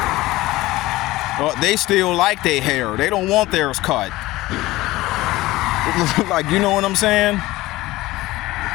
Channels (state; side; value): quieter; right; 18.3 dB